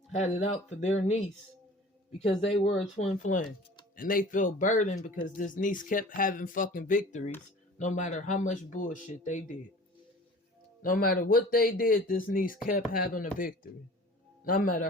had it out for their niece because they were a twin flame. And they felt burdened because this niece kept having fucking victories no matter how much bullshit they did. No matter what they did, this niece kept having a victory. No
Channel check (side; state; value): both; normal; correlation 0.44